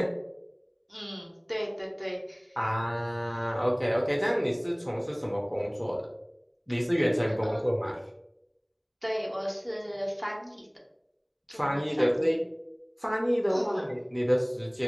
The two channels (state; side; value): identical; both; correlation 1.00